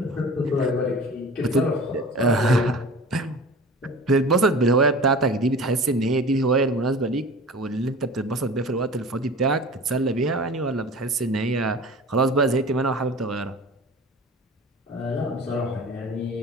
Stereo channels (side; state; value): both; normal; correlation 0.39